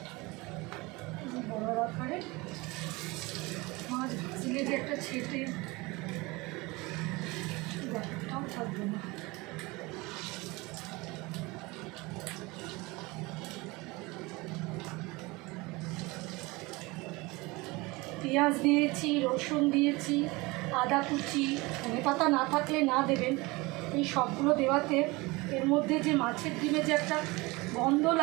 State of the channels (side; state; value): left; quieter; 23.5 dB